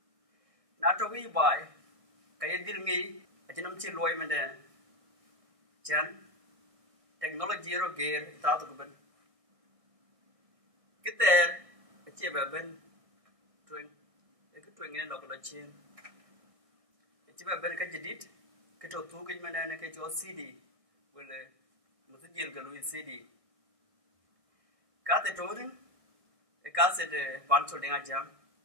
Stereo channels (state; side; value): late; left; 1.6 ms